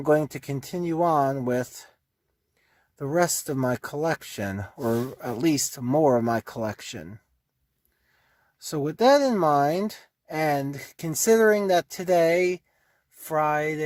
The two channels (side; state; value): both; identical; correlation 1.00